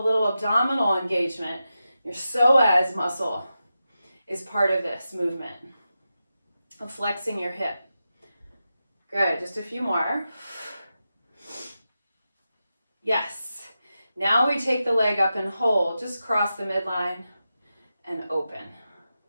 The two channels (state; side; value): inverted; both; correlation -0.90